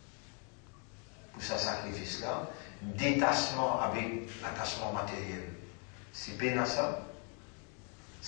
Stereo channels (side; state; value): right; quieter; 39.0 dB